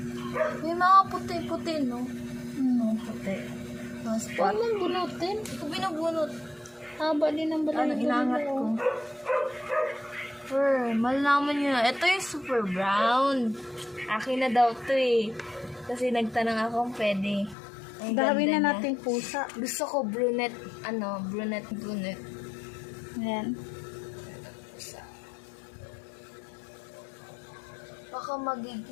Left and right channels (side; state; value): right; drops out; at 17.6 s